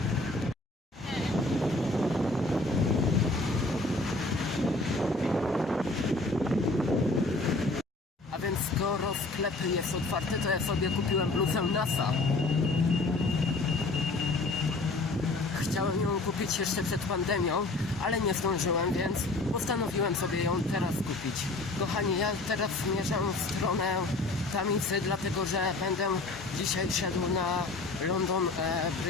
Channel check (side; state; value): right; quieter; 3.1 dB